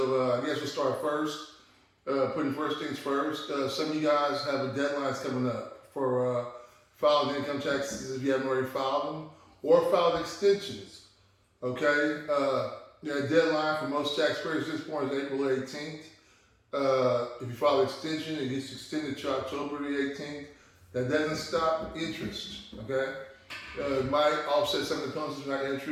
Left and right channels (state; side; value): identical; both; correlation 1.00